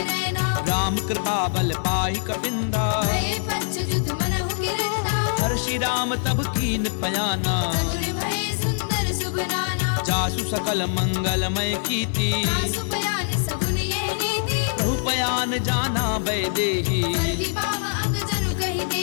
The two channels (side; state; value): right; silent; 62 dB below the other